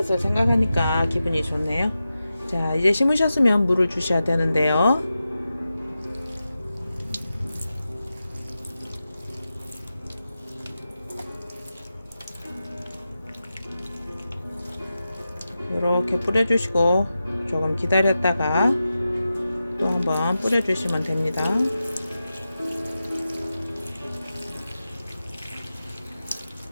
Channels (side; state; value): both; inverted; correlation -0.92